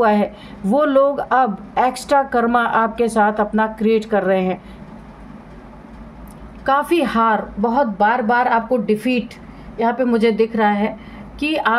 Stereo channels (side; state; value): both; identical; correlation 1.00